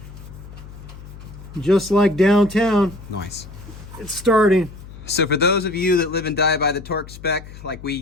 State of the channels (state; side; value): noise; left; hum, 16 dB below the sound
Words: Just like downtown. Nice. It's starting. So for those of you that live and die by the torque spec like we